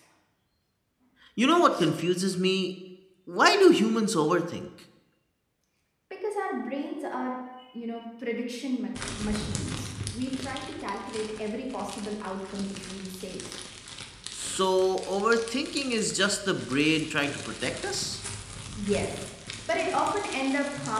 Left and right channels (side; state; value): both; identical; correlation 1.00